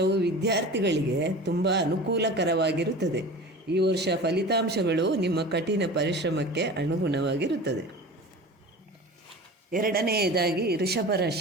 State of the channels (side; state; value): both; normal; correlation 0.36